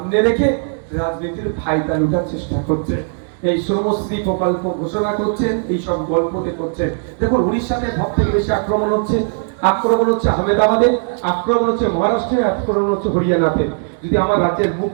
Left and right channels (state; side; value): silent; left; 66 dB below the other